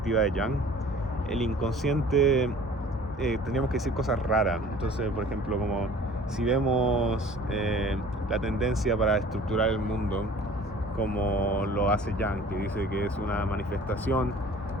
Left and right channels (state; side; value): normal; both; correlation 0.48